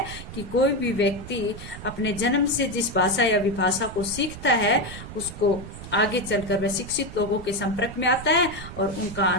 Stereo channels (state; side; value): noise; right; rumble, 12 dB below the sound